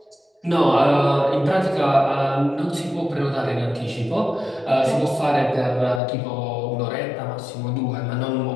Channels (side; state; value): right; drops out; at 6.0 s